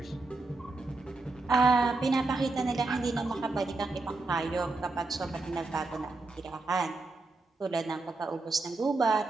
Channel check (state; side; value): quieter; left; 3.4 dB